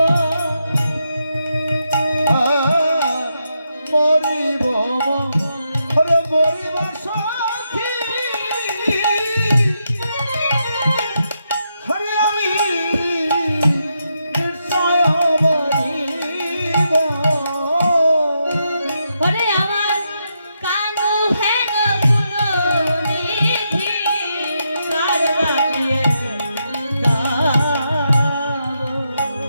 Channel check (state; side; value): inverted; both; correlation -0.82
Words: মরিব ওরে মরিব সখী, হরে আমি নিশ্চয় মরিব। ওরে আমার কানু হেন গুণনিধি কারবারিয়ে দাও,